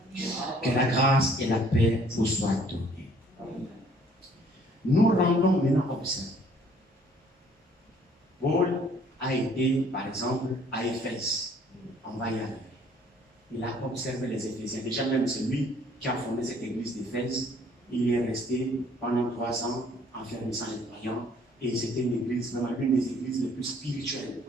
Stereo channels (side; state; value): both; normal; correlation 0.59